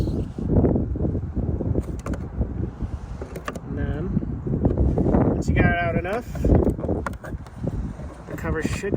Once you got it out enough, the cover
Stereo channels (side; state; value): both; identical; correlation 1.00